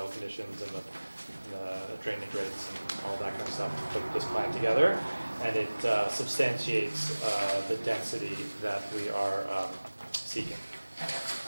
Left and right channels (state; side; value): inverted; both; correlation -1.00